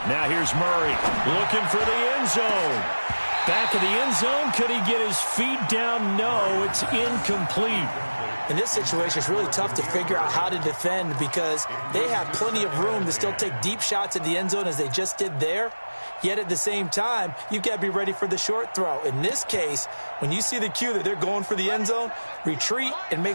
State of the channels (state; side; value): inverted; both; correlation -1.00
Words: Now here's Murray looking for the end zone. Back of the end zone. Could he get his feet down? No, it's incomplete. In this situation, it's really tough to figure out how to defend because they have plenty of room to still take deep shots at the end zone as they just did there. Yet at the same time, you've got to be ready for the short throw. In this case, when you see the cue that they're going for the end zone, retreat and make